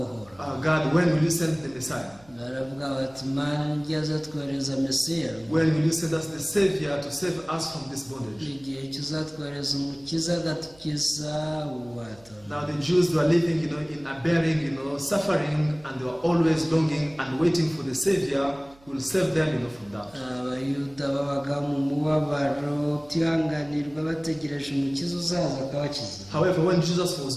God, when will you send the Messiah? Baravuga bati, Mana ngiye twohereza Mesiya. When will you send us the Savior to save us from this bondage? Igihe cyuzatwohereza umukiza agatukiza ububata. Now the Jews were living, in a bearing, suffering, and they were always longing and waiting for the Savior who will save them, from that. Abayuda babaga mu mubabaro utihanganirwa bategereje umukiza uzaza akabakiza. However, when Jesus was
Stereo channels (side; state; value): right; noise; hum, 27 dB below the sound